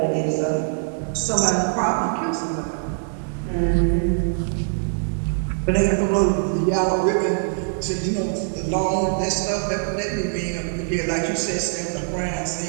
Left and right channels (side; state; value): left; silent; 63 dB below the other